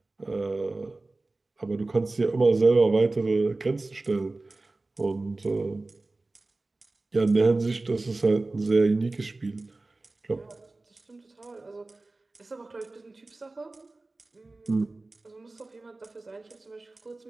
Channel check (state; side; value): quieter; left; 3.2 dB